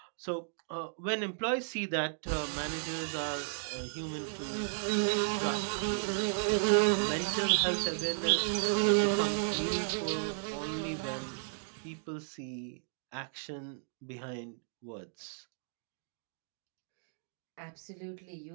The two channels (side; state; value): left; silent; digital silence